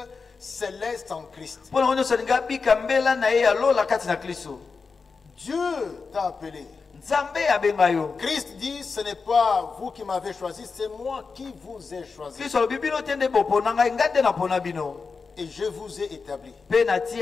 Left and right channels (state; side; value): quieter; right; 4.8 dB